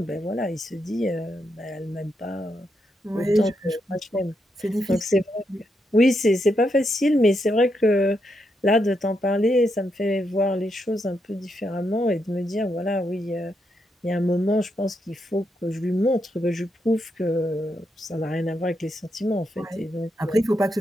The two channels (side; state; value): both; normal; correlation 0.82